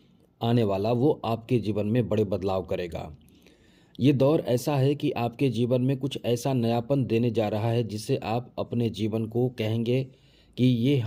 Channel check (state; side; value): identical; both; correlation 1.00